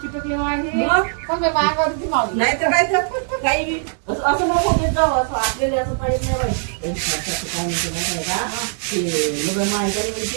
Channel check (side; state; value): left; silent; digital silence